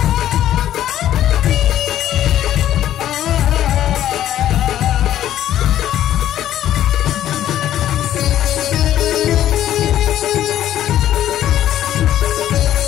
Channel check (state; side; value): quieter; right; 11.9 dB